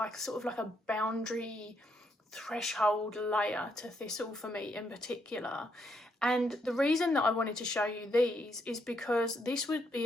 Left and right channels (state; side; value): normal; both; correlation 0.75